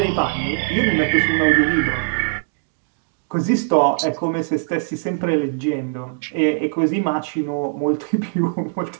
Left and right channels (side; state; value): left; silent; digital silence